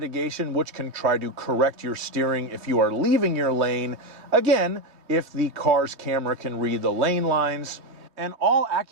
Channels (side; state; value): left; late; 3.2 ms